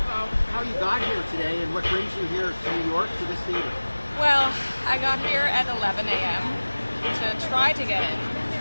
how you got here today and what brings you here to New York to this theater. Well, I got here at 11 a.m. to try to get in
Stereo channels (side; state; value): both; inverted; correlation -1.00